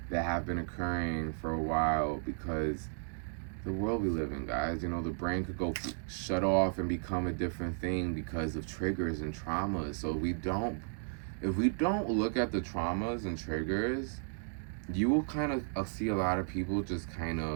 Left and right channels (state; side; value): silent; left; digital silence